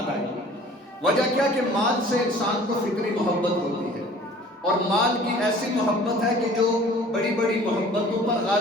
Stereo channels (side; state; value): both; normal; correlation 0.48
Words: وجہ کیا کہ مال سے انسان کو فطری محبت ہوتی ہے، اور مال کی ایسی محبت ہے کہ جو بڑی بڑی محبتوں پر